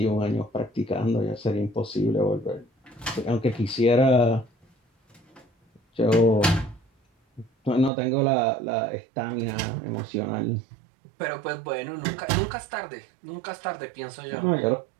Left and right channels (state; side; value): drops out; left; at 7.9 s